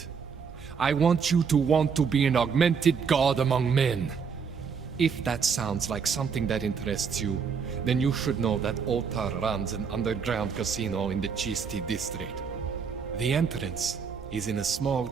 I want you to want to be an augmented god among men. If that sounds like something that interests you, then you should know that Otar runs an underground casino in the Chisti district. The entrance is in a small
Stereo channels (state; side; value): quieter; left; 6.1 dB